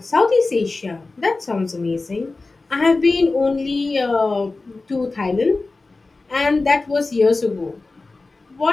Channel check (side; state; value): right; quieter; 3.5 dB